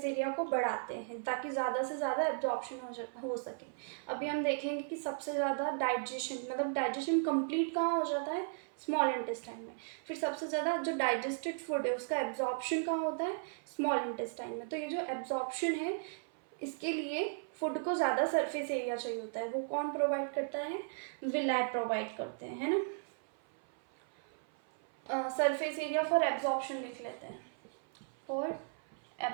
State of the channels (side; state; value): left; silent; 54 dB below the other